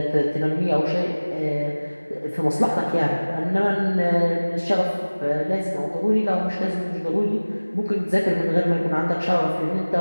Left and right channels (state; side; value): inverted; both; correlation -1.00